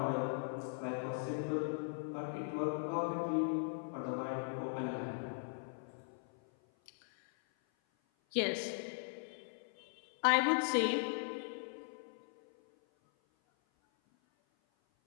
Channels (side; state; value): right; silent; 52 dB below the other